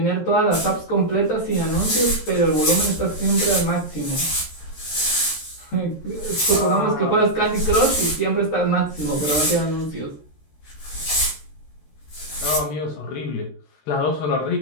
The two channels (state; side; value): late; right; 13 ms